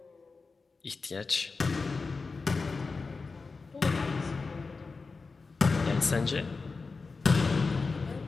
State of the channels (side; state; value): right; quieter; 4.2 dB